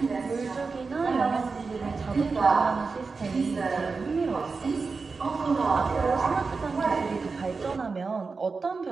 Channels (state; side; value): quieter; left; 4.5 dB